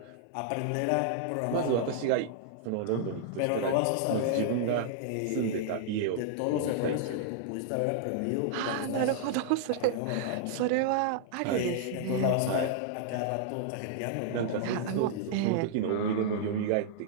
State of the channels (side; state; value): both; different; correlation -0.01